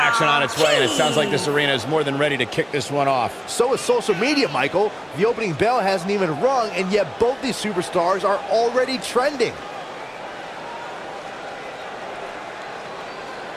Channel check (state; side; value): identical; both; correlation 1.00